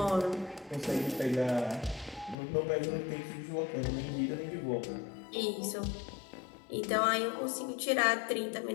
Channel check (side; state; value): right; drops out; at 2.4 s